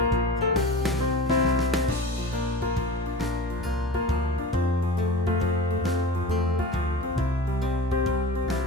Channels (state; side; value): normal; both; correlation 0.34